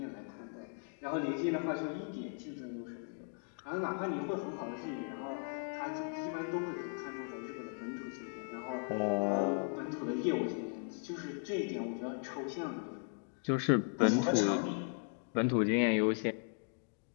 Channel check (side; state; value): right; silent; 53 dB below the other